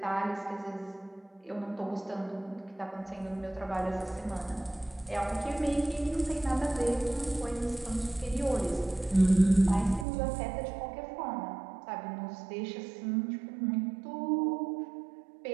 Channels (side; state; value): left; drops out; at 10.1 s